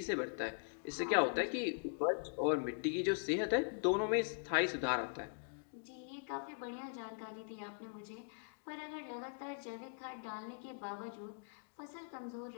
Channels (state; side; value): silent; right; digital silence